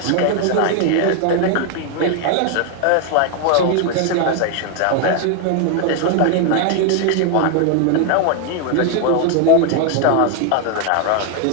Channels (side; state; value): both; different; correlation 0.01